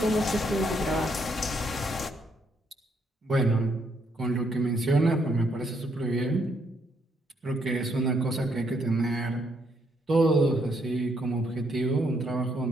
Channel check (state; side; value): normal; both; correlation 0.73